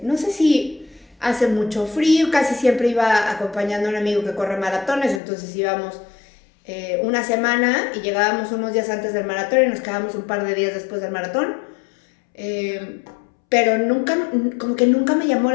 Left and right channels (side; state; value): right; drops out; at 5.2 s